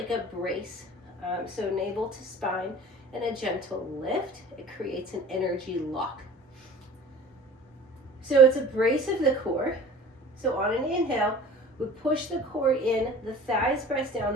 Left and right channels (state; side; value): normal; both; correlation 0.43